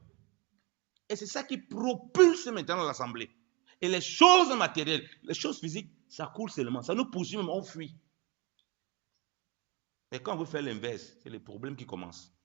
Et c'est ça qui propulse maintenant l'Assemblée. Et les choses matérielles, les choses physiques, ça coule seulement. Ça nous poursuit même, on fuit. Mais quand on veut faire l'inverse, c'est les problèmes qui commencent.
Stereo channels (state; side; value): quieter; left; 26.1 dB